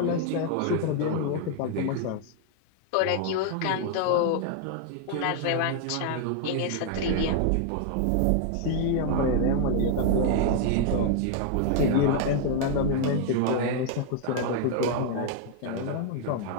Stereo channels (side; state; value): both; different; correlation 0.00